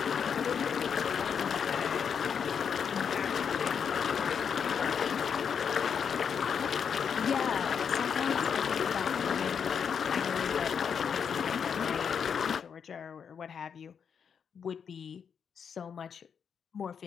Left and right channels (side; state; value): right; quieter; 7.1 dB